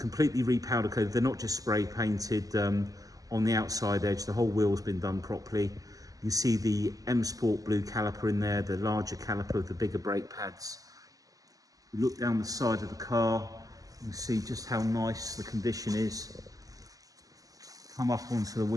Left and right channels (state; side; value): late; left; 0.17 ms